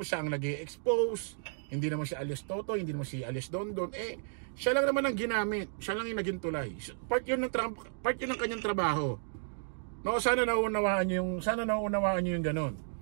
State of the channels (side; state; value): left; silent; digital silence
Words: siya ang nag-i-expose. Hindi naman si Alias Totoy, hindi naman si Alias Dondon. Siya lang naman ang ginamit, siya lang yung naging tulay. Part yun ng kanyang trabaho. No, sana nauunawaan niyo yung ganun.